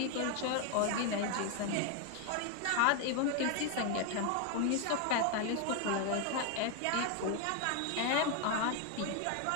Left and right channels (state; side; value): different; both; correlation 0.01